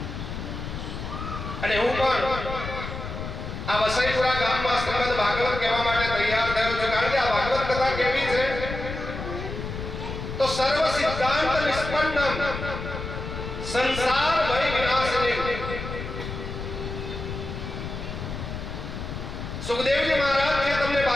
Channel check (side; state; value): left; noise; rumble, 7 dB below the sound